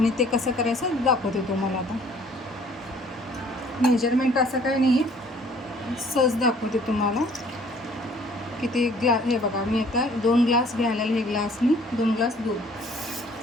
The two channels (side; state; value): both; normal; correlation 0.56